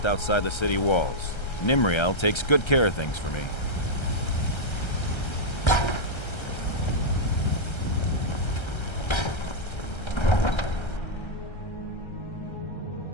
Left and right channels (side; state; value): right; late; 1.3 ms